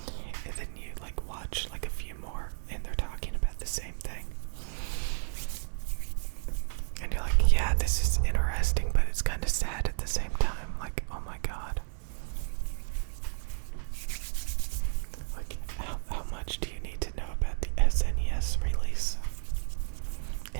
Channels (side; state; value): left; silent; digital silence